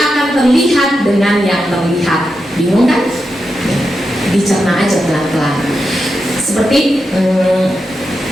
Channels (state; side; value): normal; both; correlation 0.87